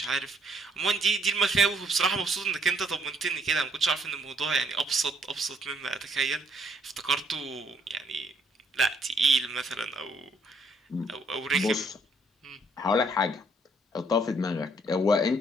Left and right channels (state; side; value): normal; both; correlation 0.67